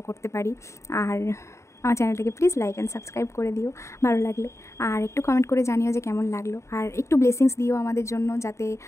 করতে পারি। আর আমার চ্যানেলটাকে প্লিজ লাইক অ্যান্ড সাবস্ক্রাইব করে দিও ভালো লাগলে। আর একটু কমেন্ট করে জানিও যে কেমন লাগলো। আর একটু ব্লেসিংস দিও আমাদের জন্য, যাতে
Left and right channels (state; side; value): late; right; 0.14 ms